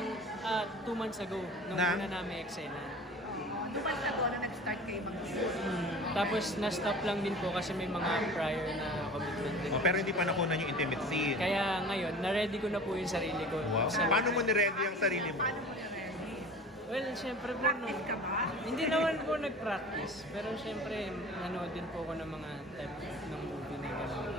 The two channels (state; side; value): normal; both; correlation 0.40